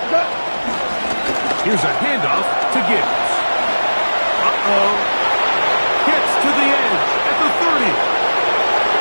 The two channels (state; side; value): inverted; both; correlation -1.00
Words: Here's a handoff to Gibbs. Gets to the edge at the 30.